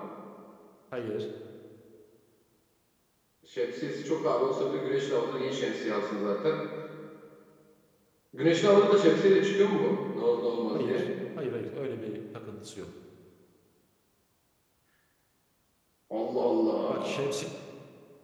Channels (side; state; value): both; identical; correlation 1.00